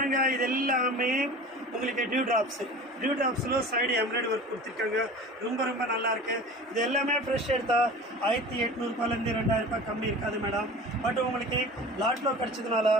இது எல்லாமே உங்களுக்கு டியூ ட்ராப்ஸில் சைடு எம்ப்ராய்டரி ஒர்க் கொடுத்துருக்காங்க. ரொம்ப ரொம்ப நல்லா இருக்கு. இது எல்லாமே ஃப்ரெஷ் எடுத்தால் 1800 2000 கம்மி இருக்காது மேடம். பட் உங்களுக்கு லாட்டில் கிடச்சதுனால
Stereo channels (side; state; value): both; normal; correlation 0.38